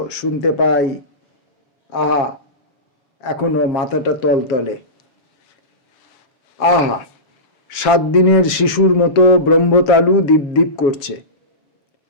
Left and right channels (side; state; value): right; late; 7.0 ms